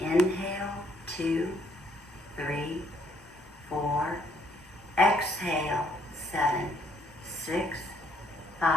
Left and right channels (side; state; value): both; normal; correlation 0.68